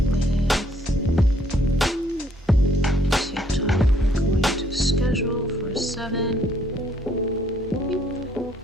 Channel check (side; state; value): both; normal; correlation 0.66